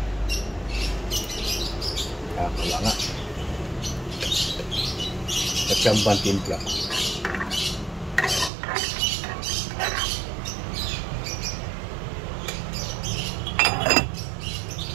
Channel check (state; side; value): drops out; left; at 8.5 s